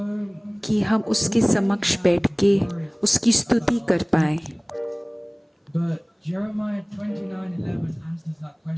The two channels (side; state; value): both; identical; correlation 1.00